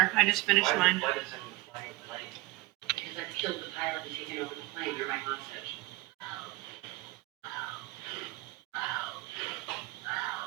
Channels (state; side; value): quieter; left; 20.1 dB